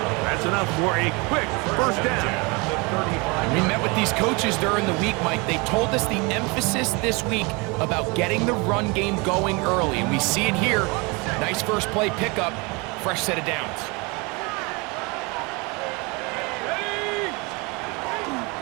That's enough for a quick first down. We met with these coaches during the week, Mike. They told us the emphasis this week about getting the run game going early, and we see it here. Nice first play pickup, fresh set of downs.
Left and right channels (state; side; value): quieter; left; 28.0 dB